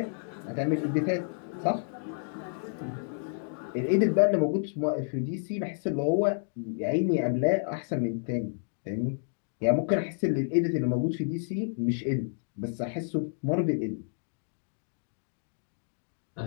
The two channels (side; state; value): right; silent; digital silence